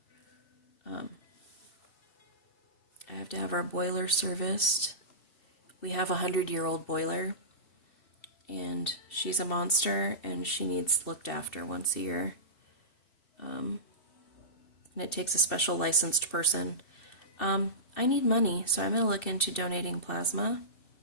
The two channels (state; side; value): late; right; 2.6 ms